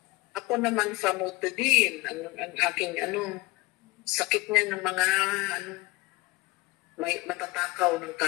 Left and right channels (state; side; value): quieter; right; 22.2 dB